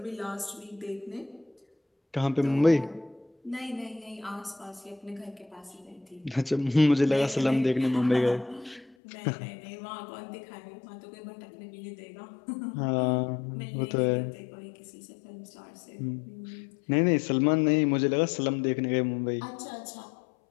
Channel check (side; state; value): right; drops out; at 9.0 s